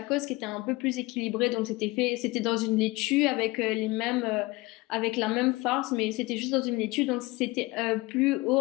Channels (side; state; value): right; quieter; 22.1 dB